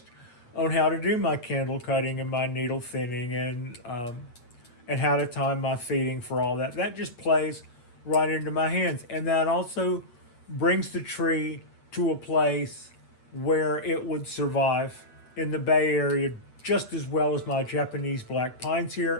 on how to do my candle cutting and my needle thinning and how to time my feeding for all that. That just plays right into my hands. And that also brings the tree to a place where it would survive in the Bay Area just as well as my Japanese black pines here,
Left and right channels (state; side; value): late; right; 8.6 ms